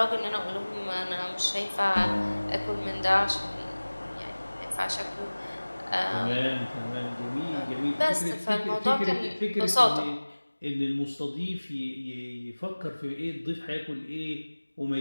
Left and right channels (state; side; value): inverted; both; correlation -1.00